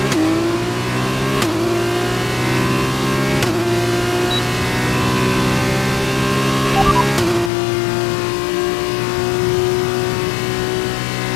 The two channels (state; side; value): drops out; right; at 7.5 s